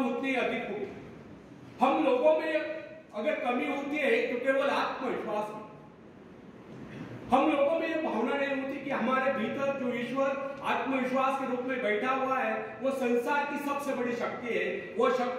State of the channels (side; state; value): both; identical; correlation 1.00